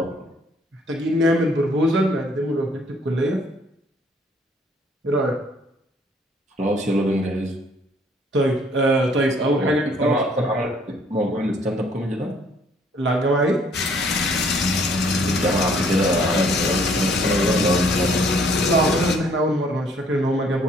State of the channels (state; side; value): normal; both; correlation 0.62